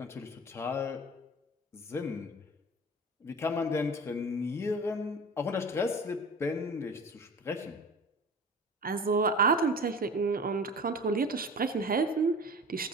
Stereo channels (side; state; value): both; normal; correlation 0.37